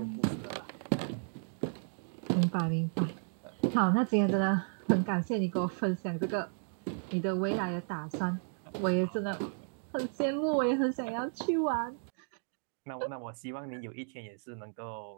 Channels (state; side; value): silent; left; 55 dB below the other